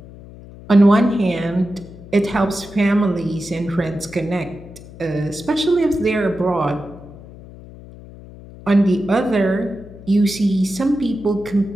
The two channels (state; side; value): noise; left; hum, 18 dB below the sound